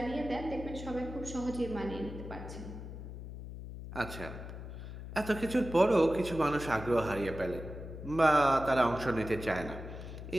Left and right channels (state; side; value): noise; left; hum, 10 dB below the sound